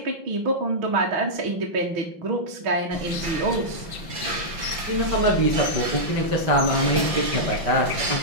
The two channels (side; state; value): left; late; 5.8 ms